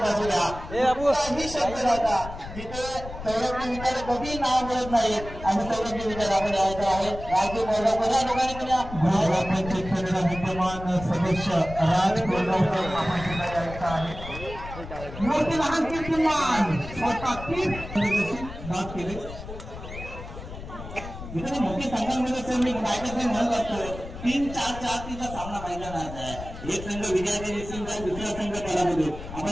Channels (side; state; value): left; noise; rumble, 11 dB below the sound